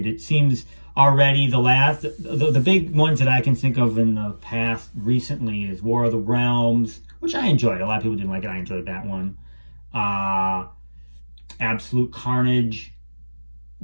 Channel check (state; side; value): inverted; both; correlation -1.00